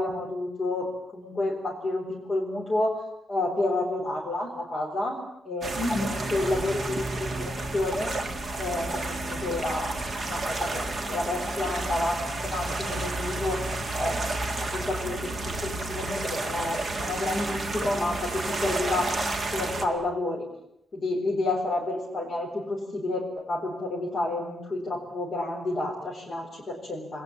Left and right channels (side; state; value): both; normal; correlation 0.80